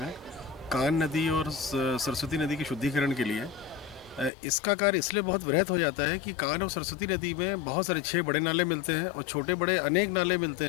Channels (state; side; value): drops out; right; at 4.3 s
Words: कान नदी और सरस्वती नदी के शुद्धिकरण के लिए। इसका कार्य इसलिए बहुत वृहत हो जाता है कि कान और सरस्वती नदी में बहुत सारे 6 बड़े नाले मिलते हैं और छोटे बड़े अनेक नाले मिलते